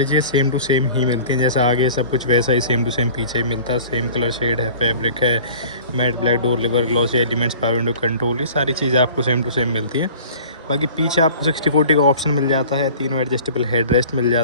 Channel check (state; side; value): inverted; both; correlation -0.45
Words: चीज़ें सेम टू सेम ही मिलती हैं, जैसा आगे सब कुछ वैसा ही सेम टू सेम पीछे ही मिलता है। सेम कलर शेड है, फैब्रिक है, matte black door liver, glossy elements, power window control, ये सारी चीज़ें आपको सेम टू सेम मिलती हैं। बाकी पीछे आपको 60/40 का ऑप्शन मिल जाता है, तीनों एडजस्टेबल हेड रेस्ट मिल